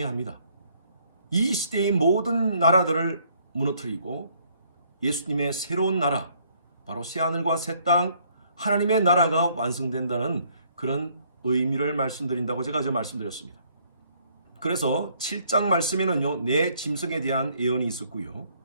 이 시대의 모든 나라들을 무너뜨리고 예수님의 새로운 나라, 바로 새하늘과 새 땅, 하나님의 나라가 완성된다는 그런 의미를 말씀드린다고 제가 어제 말씀드렸습니다. 그래서 7장 말씀에는요, 내 짐승에 대한 예언이 있었고요.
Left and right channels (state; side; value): inverted; both; correlation -0.65